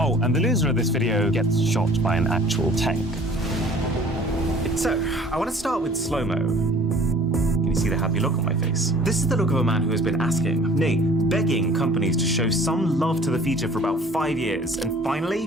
and the loser of this video gets shot by an actual tank. So, I want to start with slow-mo. Can you see the happy look on my face? This is the look of a man who has been asking, nay, begging companies to show some love to the feature for about 5 years, and finally,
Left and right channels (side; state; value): both; normal; correlation 0.50